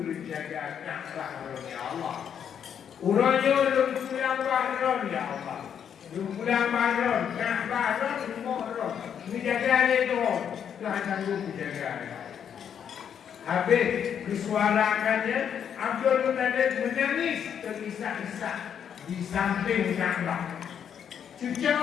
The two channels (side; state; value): right; quieter; 8.3 dB